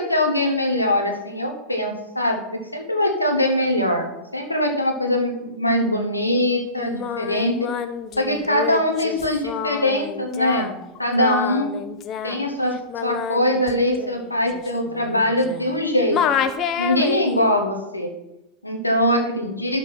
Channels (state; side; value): inverted; both; correlation -0.43